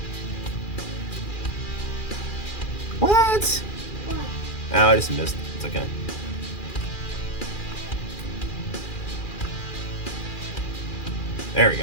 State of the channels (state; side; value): late; right; 2.4 ms